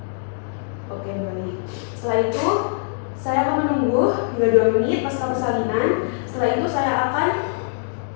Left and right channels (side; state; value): right; silent; digital silence